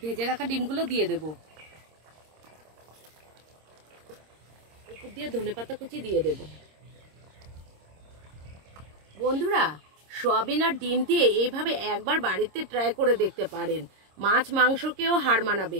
ভেজে রাখা ডিমগুলো দিয়ে দেব। উপর দিয়ে ধনেপাতা কুচি দিয়ে দেব। বন্ধুরা সয়াবিন আর ডিম দিয়ে এইভাবে একবার বাড়িতে ট্রাই করে দেখতে পারেন। মাছ মাংসকেও হার মানাবে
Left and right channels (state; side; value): late; left; 26 ms